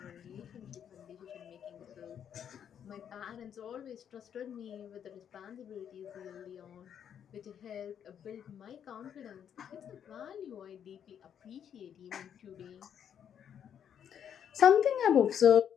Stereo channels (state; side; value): quieter; right; 8.8 dB